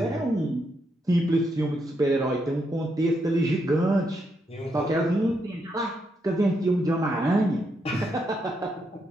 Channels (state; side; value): normal; both; correlation 0.80